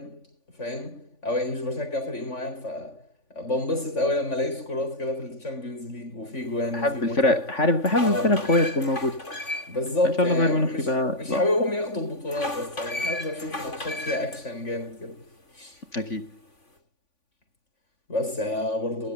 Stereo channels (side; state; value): right; late; 3.5 ms